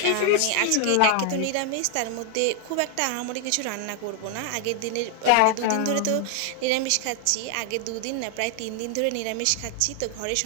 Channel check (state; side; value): different; both; correlation 0.00